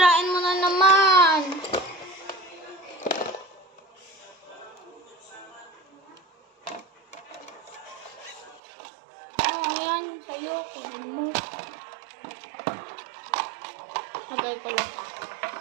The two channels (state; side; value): drops out; left; at 8.6 s